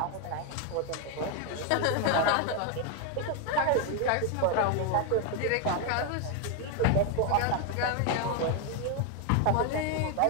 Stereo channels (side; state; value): both; different; correlation 0.01